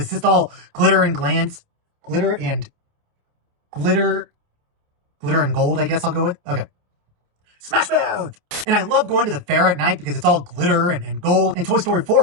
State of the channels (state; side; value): late; left; 28 ms